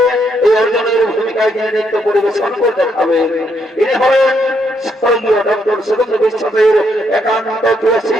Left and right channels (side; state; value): both; normal; correlation 0.75